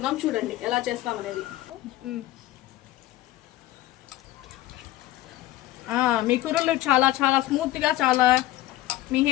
చూడండి ఎలా చేస్తాం అనేది. మీ కుర్రలు చాలా చాలా స్మూత్ గా, చాలా మీ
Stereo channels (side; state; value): right; quieter; 15.8 dB